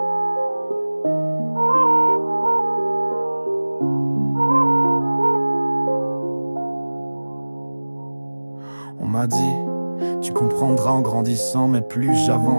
On m'a dit, tu comprendras en grandissant, mais plus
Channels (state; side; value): inverted; both; correlation -1.00